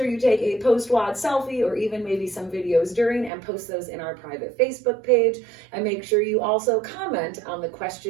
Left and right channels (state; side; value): drops out; left; at 3.3 s